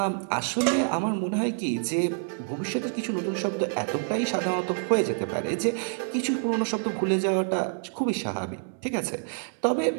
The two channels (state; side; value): silent; left; digital silence